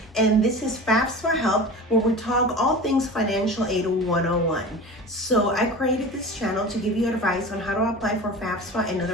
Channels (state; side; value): normal; both; correlation 0.34